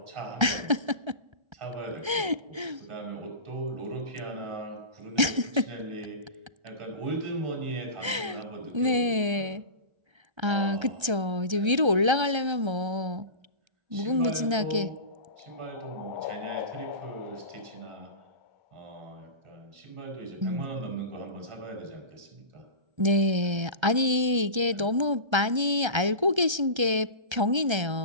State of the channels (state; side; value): late; left; 1.3 ms